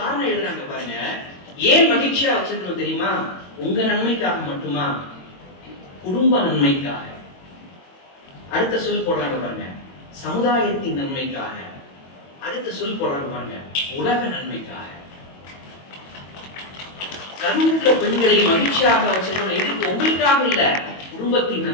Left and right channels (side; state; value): right; late; 22 ms